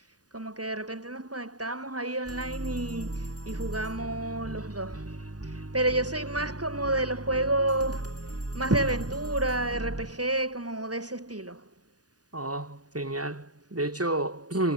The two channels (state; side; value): late; left; 0.68 ms